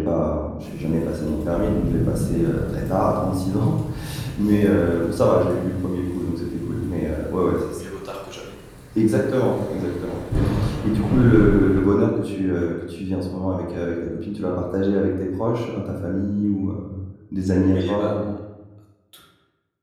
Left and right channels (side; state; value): both; identical; correlation 1.00